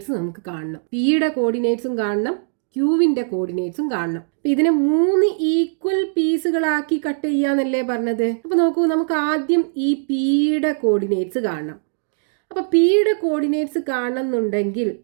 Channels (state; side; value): silent; left; digital silence